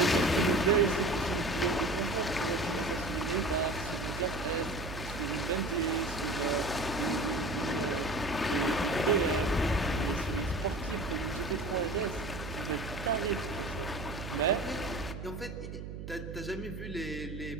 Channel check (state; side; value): noise; right; hum, 9 dB below the sound